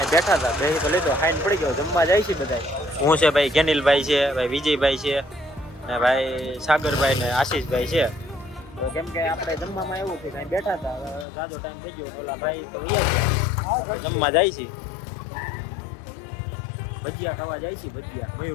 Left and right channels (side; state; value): right; drops out; at 11.2 s